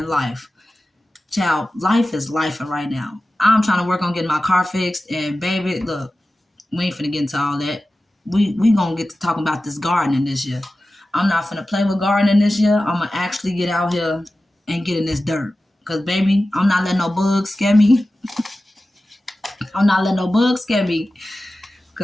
life. Child, life is life right now. I'm trying to work on getting my car fixed, and baby, look, we ain't finna get into all that. We gonna get to talking about this gardening this year. I'm not finna play with gardening this year. I'm gonna actually get out here and get in this dirt. Cause baby, I'm not letting no bugs scare me. I'm not letting no bugs scare me.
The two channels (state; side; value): normal; both; correlation 0.95